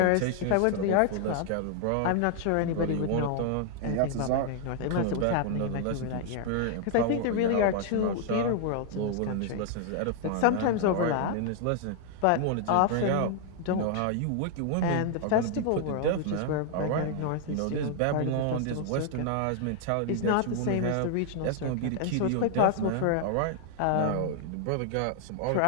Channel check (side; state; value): both; different; correlation 0.00